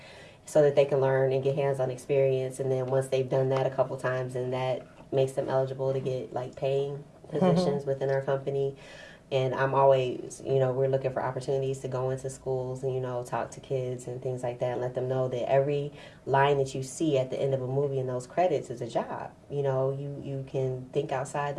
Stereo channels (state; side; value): identical; both; correlation 1.00